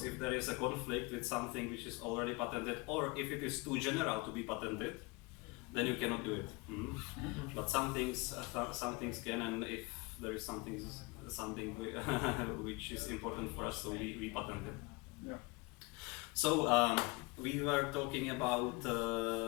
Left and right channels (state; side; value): quieter; right; 26.3 dB